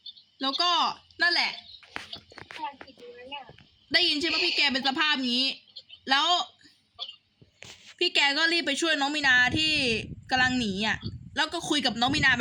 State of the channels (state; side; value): identical; both; correlation 1.00